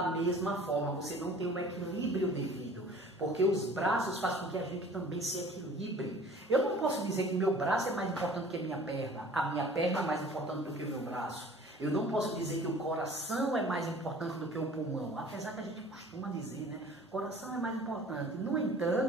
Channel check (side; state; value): both; normal; correlation 0.47